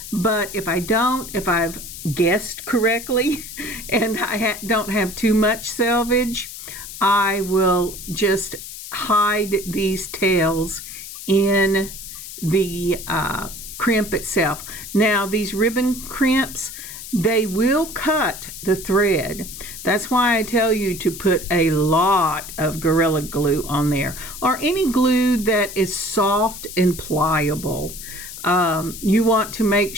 But if I don't, if I've guessed correctly and I don't have too much selvage, I will just hide these tails in the crimp itself. Now, these ribbon crimps, they will cut the thread. That's why I tell you to put a lot of Gorilla Glue on there, or any glue that is soft and pliable. You want to make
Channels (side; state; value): left; noise; hiss, 11 dB below the sound